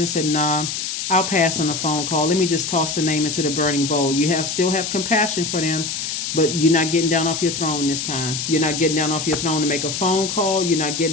said, nah, I'll pass on a phone call. Let me just toss the name into the burning bowl. You still have compassion for them, but you're not getting down off your throne this time. You're not getting down off your throne to make a phone call. You're not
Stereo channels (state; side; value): noise; left; hiss, 4 dB below the sound